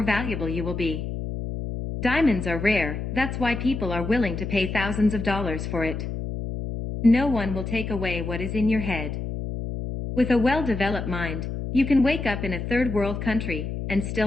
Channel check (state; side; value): noise; left; hum, 5 dB below the sound